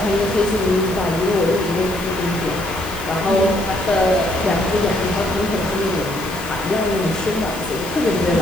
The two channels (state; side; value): noise; left; hiss, 17 dB below the sound